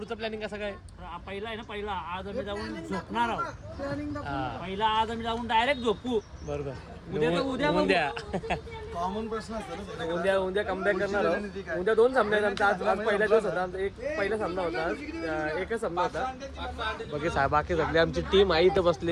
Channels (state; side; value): identical; both; correlation 1.00